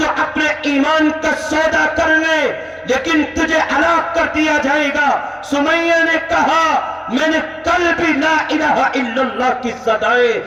اپنے ایمان کا سودا کر لے لیکن تجھے ہلاک کر دیا جائے گا. سمیہ نے کہا میں نے کل بھی لا الہ الا اللہ کی صدائیں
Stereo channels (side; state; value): both; identical; correlation 1.00